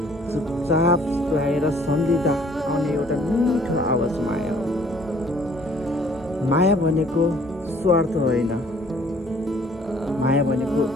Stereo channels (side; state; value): both; normal; correlation 0.58